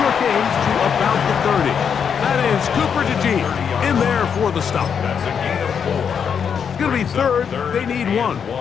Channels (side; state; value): right; quieter; 7.2 dB